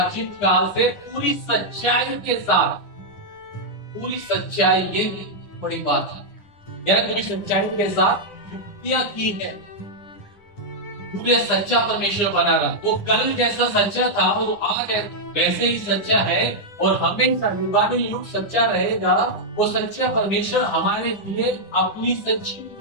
काल से पूरी सच्चाई के साथ, पूरी सच्चाई, ये बड़ी बात है यार, पूरी सच्चाई के साथ युक्तियां की है। पूरे सच्चा परमेश्वर बना रहा, वो कल जैसा सच्चा था वो आज वैसे ही सच्चा है और हमेशा युगानुयुग सच्चा रहेगा। वो सच्चा परमेश्वर हमारे लिए अपनी सच्ची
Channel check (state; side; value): late; right; 9.7 ms